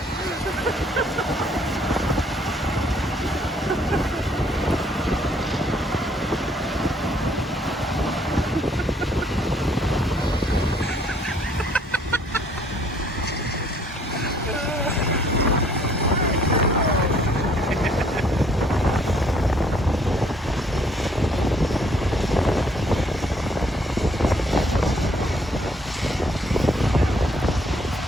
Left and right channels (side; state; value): both; normal; correlation 0.64